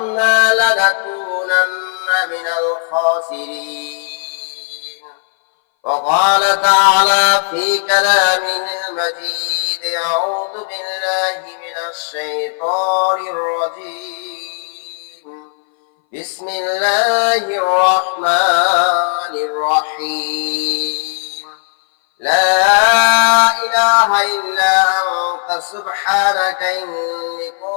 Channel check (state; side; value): silent; right; 61 dB below the other